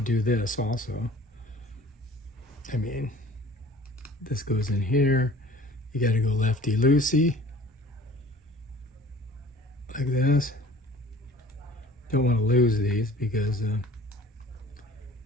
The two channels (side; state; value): both; normal; correlation 0.47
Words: do this also. I mean, this goes in here. You got to go lefty-loosey, like this. Don't want to lose these because that